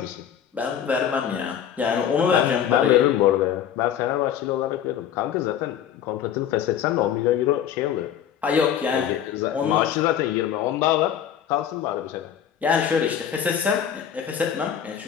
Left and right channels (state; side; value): quieter; right; 9.3 dB